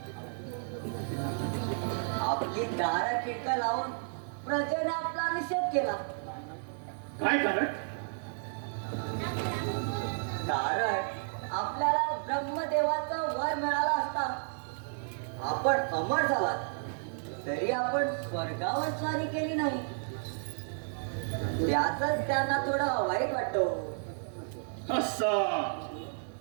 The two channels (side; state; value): left; silent; digital silence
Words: आपली दारा खिडका लावून प्रजेने आपला निषेध केला. काय कारण? कारण आपल्याला ब्रह्मदेवाचा वर मिळाला असता. आपण अमर झालात तरी आपण स्वर्गावर स्वारी केली नाही. त्याच त्यांना थोडं वाईट वाटतो. असा